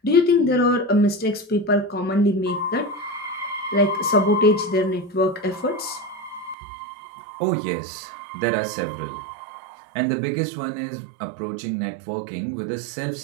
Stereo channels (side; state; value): left; drops out; at 6.6 s